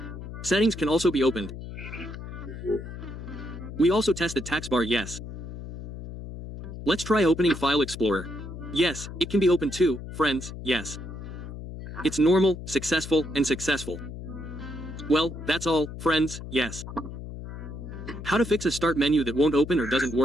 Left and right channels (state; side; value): noise; left; hum, 10 dB below the sound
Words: Settings can also be opened. We also tested taskbar yes. Let's try opening File Explorer. Yes, it can be opened too, friends, yes. It's normal, successful, and successful. Well, that's all, friends, yes. How to fix a start menu that won't open or doesn't